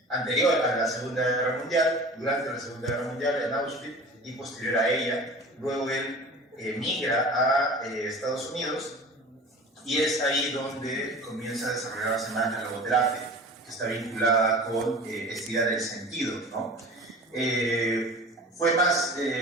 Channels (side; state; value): both; normal; correlation 0.39